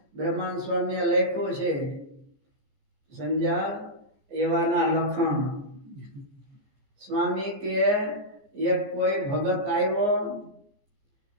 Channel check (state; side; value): late; left; 14 ms